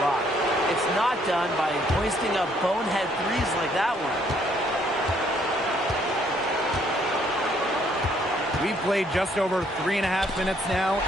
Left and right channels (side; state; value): both; normal; correlation 0.66